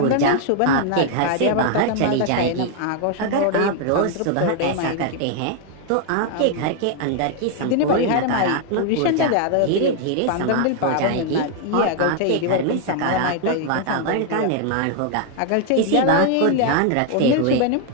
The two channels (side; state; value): both; different; correlation 0.00